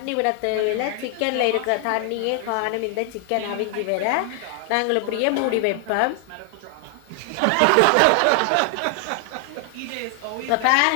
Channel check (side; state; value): both; different; correlation 0.00